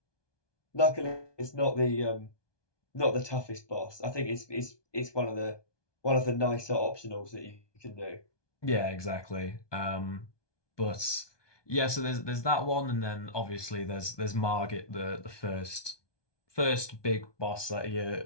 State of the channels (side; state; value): right; late; 1.2 ms